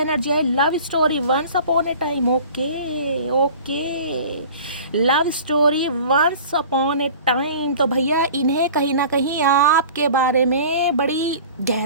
है love story once upon a time. Okay okay, love story once upon a time. तो भैया इन्हें कहीं ना कहीं आपके बारे में बड़ी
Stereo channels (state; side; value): inverted; both; correlation -0.42